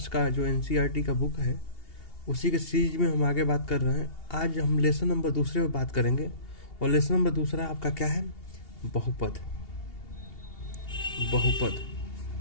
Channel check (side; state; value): right; late; 2.8 ms